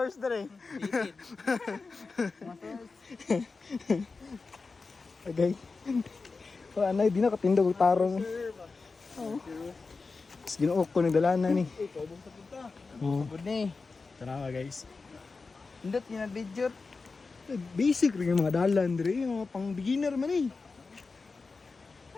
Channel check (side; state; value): right; quieter; 4.2 dB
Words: dire. Okay. So anay di na katindog tarong. Oh. Ginuok ko nagdalanan ni. Ikaw bang sa punta? Oh. Good ni. Tara guys. Indot ni video. Basic rin yung mga dalan dire, yung mga pang beginner man eh.